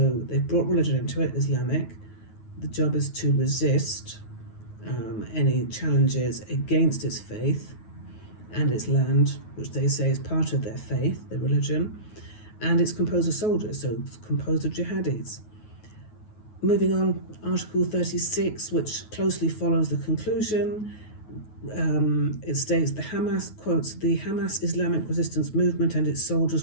they've brought religion into it, Islamic, The job is to resist any challenges against its faith and its land, which they say is part of their faith, their religion, and it's composed of soldiers, so it's composed of jihadis. Moving on, Article 36, which closely follows the conclusion, it states the Hamas, quotes, the Hamas Islamic resistance movement and its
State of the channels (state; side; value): late; right; 9.4 ms